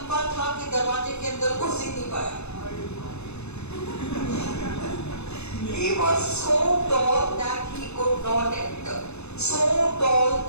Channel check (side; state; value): right; late; 0.81 ms